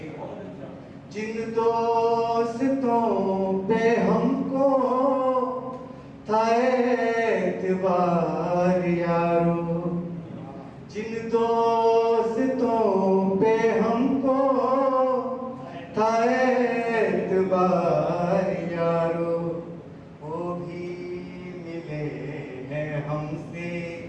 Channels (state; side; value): identical; both; correlation 1.00